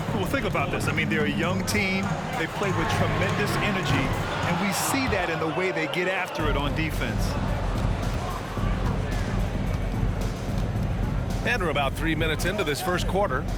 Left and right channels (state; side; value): identical; both; correlation 1.00